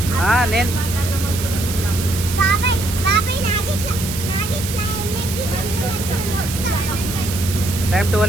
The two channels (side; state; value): right; noise; hiss, 7 dB below the sound